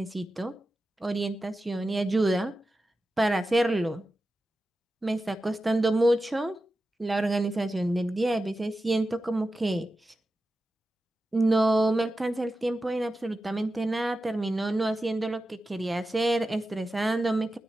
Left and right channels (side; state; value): both; normal; correlation 0.92